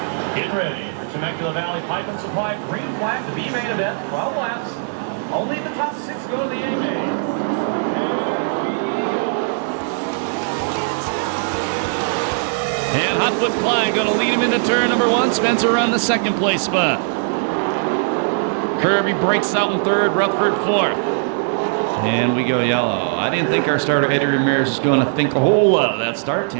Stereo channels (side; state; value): left; silent; digital silence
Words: Get ready for Temecula Valley Pipe and Supply green flag to be main event, 12 laps. Only the top 6 go to the A main. And Hotfoot Klein going to lead him into turn number 1. Spencer on the second place spot. Kirby breaks out in third, Rutherford fourth. And we go yellow. I didn't think our starter Eddie Ramirez was going to think a whole lot of that start,